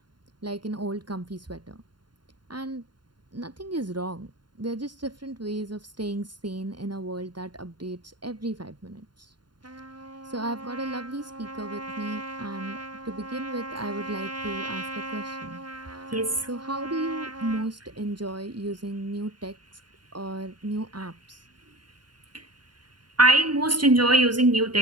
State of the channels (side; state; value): left; late; 0.71 ms